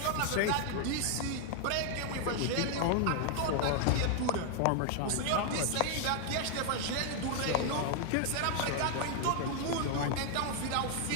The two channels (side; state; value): both; different; correlation 0.00